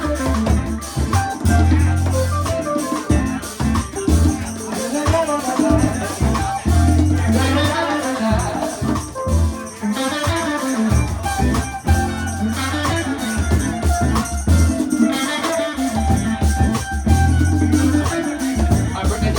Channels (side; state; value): both; identical; correlation 1.00